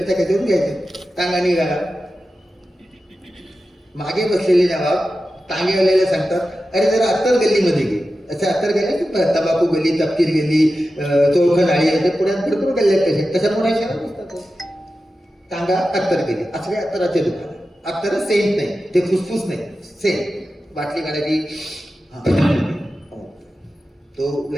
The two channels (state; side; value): normal; both; correlation 0.93